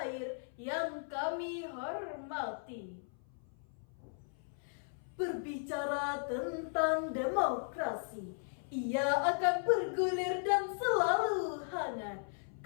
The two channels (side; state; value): right; silent; 53 dB below the other